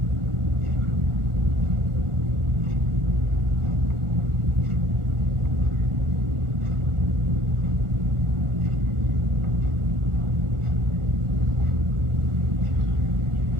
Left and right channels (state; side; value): late; left; 1.4 ms